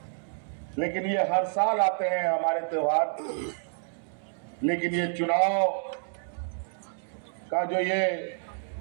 लेकिन ये हर साल आते हैं हमारे त्योहार। लेकिन ये चुनाव का जो ये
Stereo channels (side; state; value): left; silent; digital silence